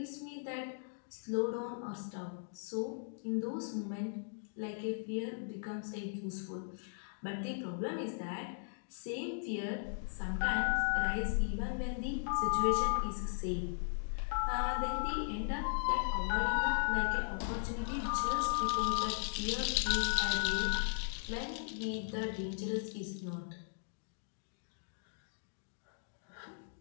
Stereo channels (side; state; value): right; silent; digital silence